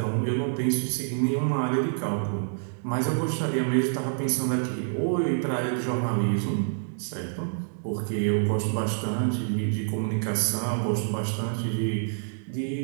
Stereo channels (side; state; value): left; silent; digital silence